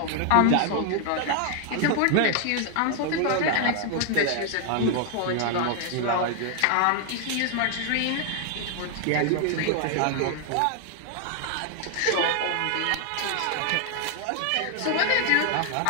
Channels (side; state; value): both; different; correlation 0.00